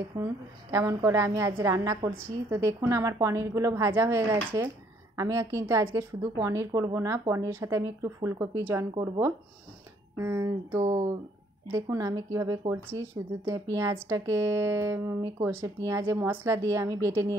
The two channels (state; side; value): normal; both; correlation 0.65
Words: কেমন করে আমি আজ রান্না করছি। তো দেখুন আমার পনিরগুলো ভাজা হয়ে গেছে। আমি কিন্তু আজকে শুধু পনির করব না, পনিরের সাথে আমি একটু ফুলকপি জয়েন করব। তো দেখুন আমি কিভাবে করছি। শুধু পেঁয়াজটাকে আমি পেঁয়াজে মশলা দিয়ে আমি বেটে